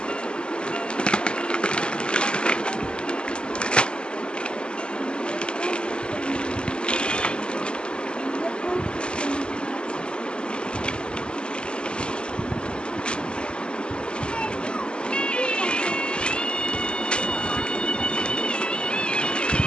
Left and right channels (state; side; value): late; right; 0.050 ms